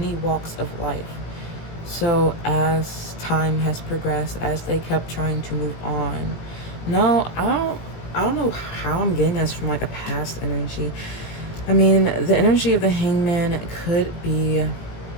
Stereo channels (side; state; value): right; late; 18 ms